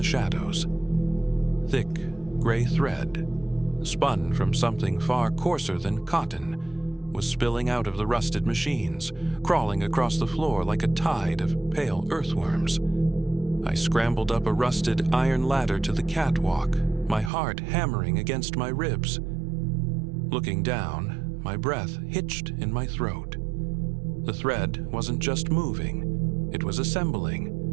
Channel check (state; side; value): drops out; left; at 17.3 s